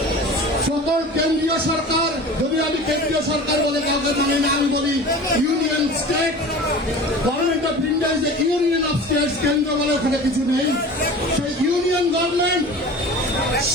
সকল কেন্দ্রীয় সরকার, যদি আমি কেন্দ্রীয় সরকার বলে কাউকে মানে না, আমি বলি union state government of India is the union of states. কেন্দ্র বলে ওখানে কিছু নেই। সেই ইউনিয়ন গভর্নমেন্ট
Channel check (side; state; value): both; normal; correlation 0.37